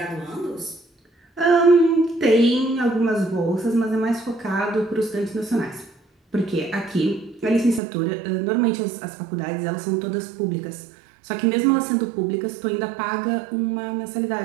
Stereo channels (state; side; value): drops out; left; at 7.8 s